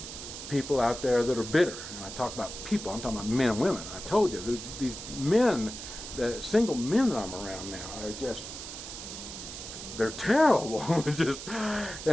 people out there that are bitter. And I talk about people, I'm talking about men and women. I told you, there's these men, the single men that I'm around now are just, they're terrible. Just,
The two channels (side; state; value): right; noise; hiss, 10 dB below the sound